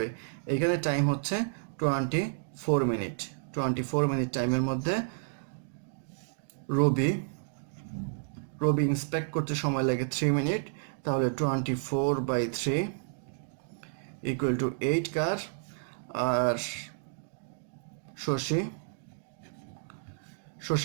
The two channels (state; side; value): silent; left; digital silence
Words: এখানে time হচ্ছে 24 minute. 24 minute টাইমের মধ্যে রবি ইন্সপেক্ট করতে সময় লাগে 3 মিনিট, তাহলে 24/3 ইকুয়াল টু 8 কার। আর